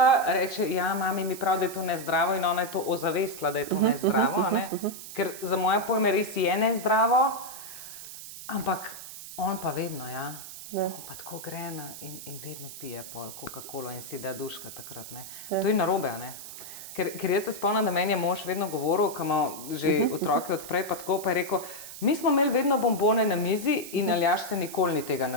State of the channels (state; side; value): noise; right; hiss, 12 dB below the sound